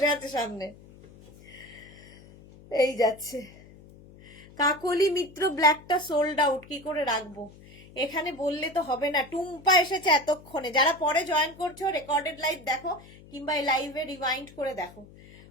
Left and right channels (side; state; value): left; noise; hum, 21 dB below the sound